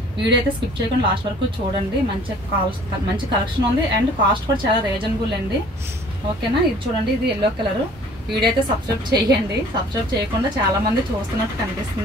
వీడియో అయితే స్కిప్ చేయకుండా లాస్ట్ వరకు చూడండి. మంచి కలెక్షన్ ఉంది అండ్ కాస్ట్ కూడా చాలా రీజనబుల్ అండి. ఓకేనా? ఇది చూడండి, ఇది ఎల్లో కలర్. వీడియో అయితే సబ్స్క్రైబ్ చేయండి. సబ్స్క్రైబ్ చేయకుండా చాలా మంది చూస్తున్నట్టు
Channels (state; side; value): normal; both; correlation 0.52